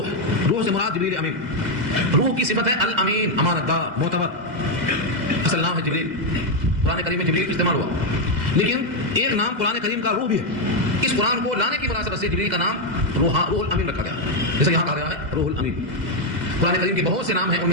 روح سے مراد جبریل امین. روح کی صفت ہے الامین، امانت دار، معتبر. اصل نام ہے جبریل. قرآن کریم میں جبریل استعمال ہوا، لیکن ایک نام قرآن کریم کا روح بھی ہے. اس قرآن کو لانے کی مناسبت سے جبریل کا نام روح الامین رکھا گیا، جیسے یہاں کہا گیا ہے روح الامین. قرآن کریم کے بہت سے نام ہیں، ان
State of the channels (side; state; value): left; late; 2.0 ms